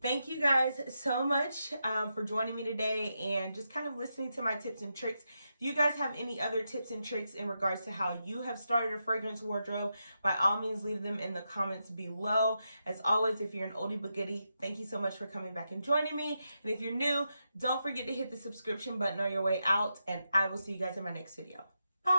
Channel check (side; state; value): both; inverted; correlation -0.86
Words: you guys so much for joining me today and just kind of listening to my tips and tricks. If you guys have any other tips and tricks in regards to how you have started a fragrance wardrobe, by all means leave them in the comments below. As always, if you're an oldie but goodie, thank you so much for coming back and joining me. And if you're new, don't forget to hit the subscription button on your way out, and I will see you guys in my next video.